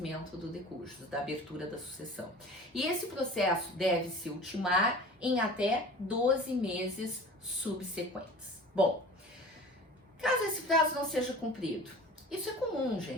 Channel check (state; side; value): normal; both; correlation 0.40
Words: do decúbito, da abertura da sucessão. E esse processo deve se ultimar em até 12 meses subsequentes. Bom, caso esse prazo não seja cumprido, isso é comum,